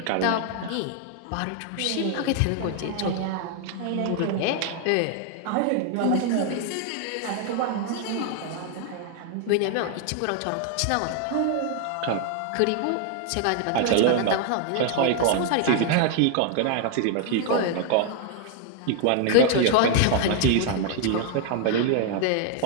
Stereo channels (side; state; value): both; different; correlation 0.00